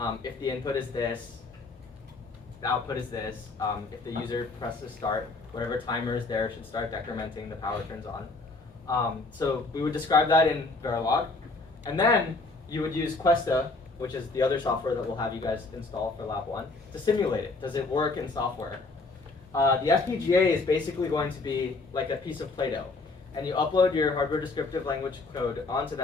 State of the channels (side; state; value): right; quieter; 3.6 dB